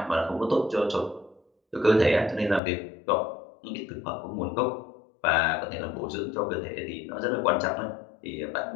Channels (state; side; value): drops out; right; at 2.6 s